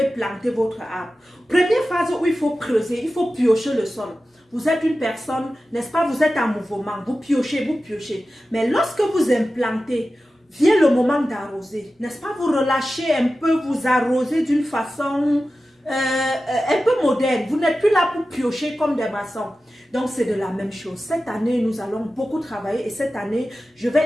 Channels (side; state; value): both; normal; correlation 0.94